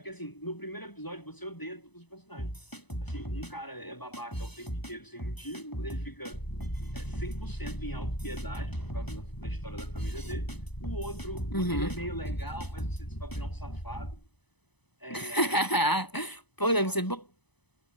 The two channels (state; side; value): late; right; 0.99 ms